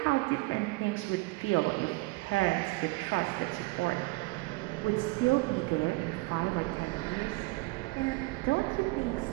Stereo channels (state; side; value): quieter; left; 23.7 dB